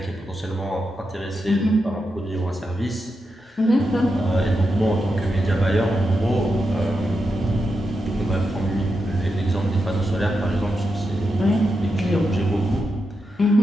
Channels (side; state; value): both; normal; correlation 0.87